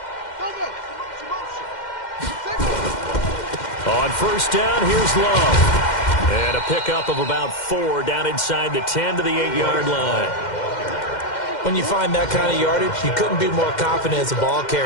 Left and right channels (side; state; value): right; late; 2.1 ms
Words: On 1st down, here's Love. And a pickup of about 4 down inside the 10 to the 8-yard line. When you find that kind of yardage, you couldn't be more confident as a ball